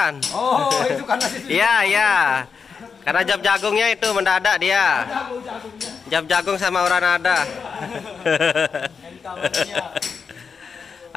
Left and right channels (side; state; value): right; quieter; 5.8 dB